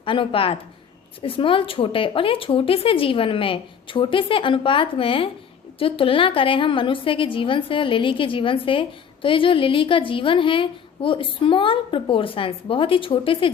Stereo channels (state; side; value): quieter; right; 7.4 dB